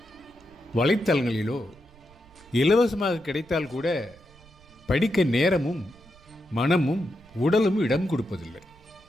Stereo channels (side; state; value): right; noise; rumble, 26 dB below the sound